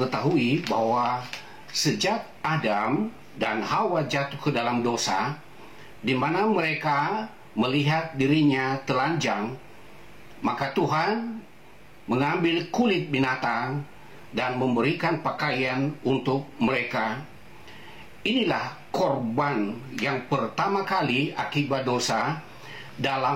bahwa sejak Adam dan Hawa jatuh ke dalam dosa, di mana mereka melihat dirinya telanjang, maka Tuhan mengambil kulit binatang dan memberikan pakaian untuk mereka. Inilah korban yang pertama kali akibat dosa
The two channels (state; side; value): identical; both; correlation 1.00